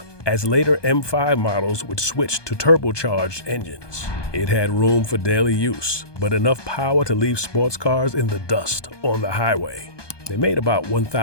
as later M5 models would switch to turbocharged engines. It had room for daily use, but enough power to leave sports cars in the dust on the highway. They made about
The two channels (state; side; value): late; right; 1.2 ms